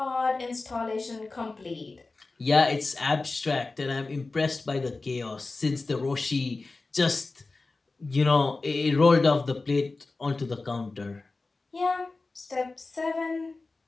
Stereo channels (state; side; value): quieter; right; 3.6 dB